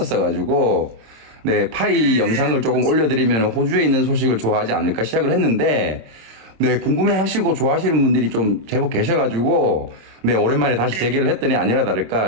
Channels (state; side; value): late; left; 26 ms